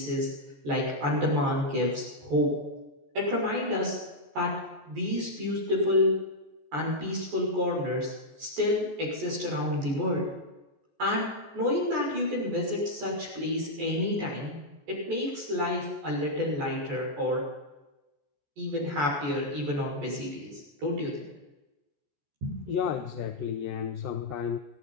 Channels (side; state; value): left; late; 14 ms